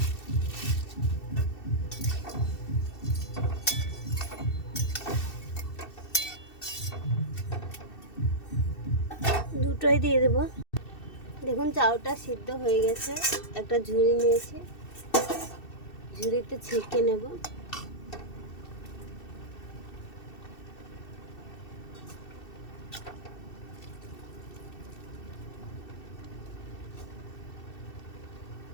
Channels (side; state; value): right; late; 2.7 ms